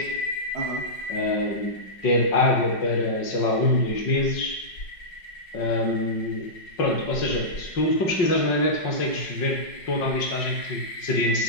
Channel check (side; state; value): right; late; 5.5 ms